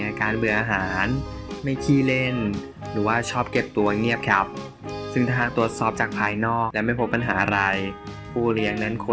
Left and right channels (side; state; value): both; identical; correlation 1.00